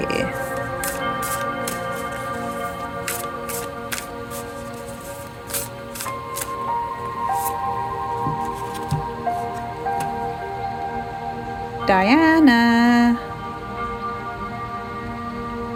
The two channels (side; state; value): both; identical; correlation 1.00